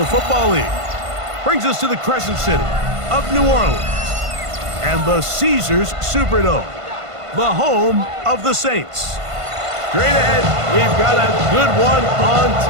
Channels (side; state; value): left; late; 1.5 ms